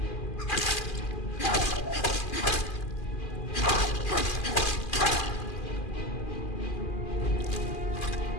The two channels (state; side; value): late; right; 2.4 ms